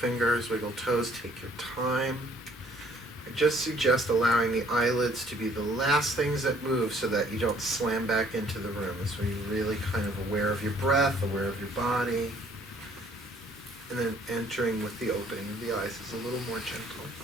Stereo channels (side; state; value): both; normal; correlation 0.60